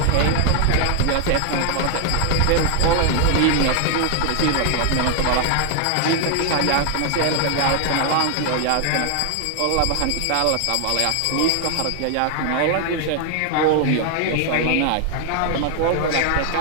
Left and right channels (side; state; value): both; different; correlation 0.00